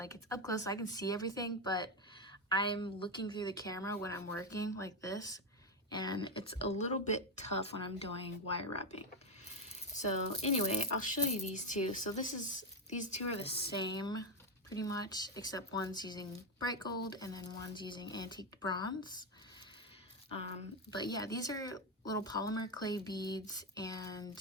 it's up close, so I can see everything, but I'm looking through the camera when I'm working like this, and it's a little bit tough when I'm doing wire wrapping. So anyway, I'll show you these two. So these two are the same pretty much, except one's using bright gold and then one's using antique bronze. But yeah, these are little polymer clay beads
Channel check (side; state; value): both; normal; correlation 0.07